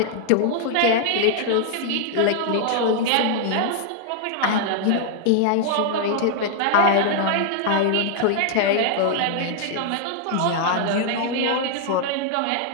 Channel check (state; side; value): different; both; correlation 0.00